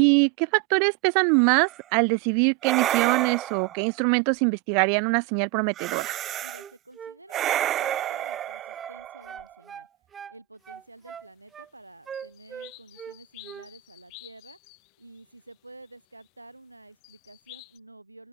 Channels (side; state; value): left; quieter; 19.1 dB